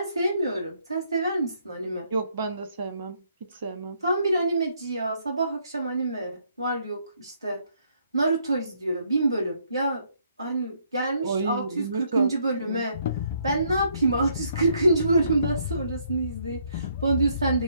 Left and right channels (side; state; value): both; inverted; correlation -0.70